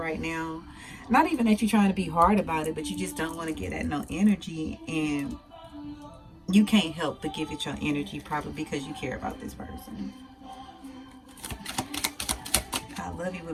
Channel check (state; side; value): identical; both; correlation 1.00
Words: now. Not even that you're trying to be hard about it, but you just don't want to get that no energy. And you can't help but give it your energy, probably because you care about this person. I love you